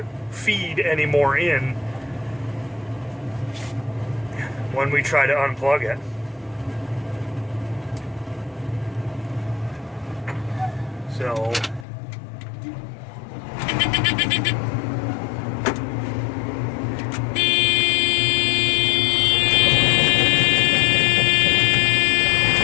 feed any more in when we try to unplug it. So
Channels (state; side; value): drops out; right; at 11.9 s